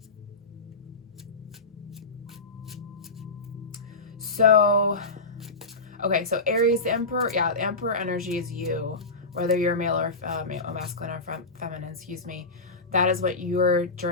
So, okay, so Aries, the Emperor, yeah, the Emperor energy is you, whether you're male or masculine or feminine, excuse me. That is what your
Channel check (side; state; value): right; quieter; 3.4 dB